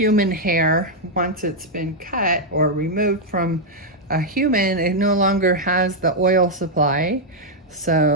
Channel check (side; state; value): both; normal; correlation -0.02